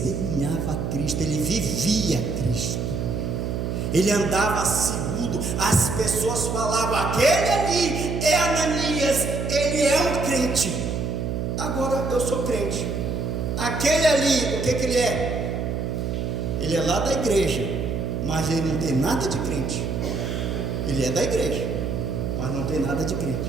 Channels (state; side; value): noise; right; hum, 2 dB below the sound